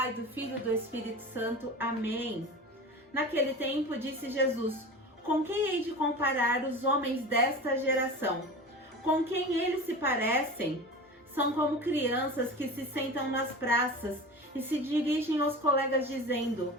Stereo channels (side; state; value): both; normal; correlation 0.33